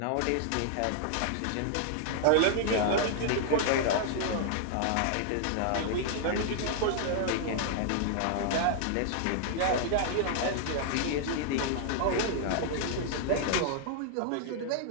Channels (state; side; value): different; both; correlation -0.01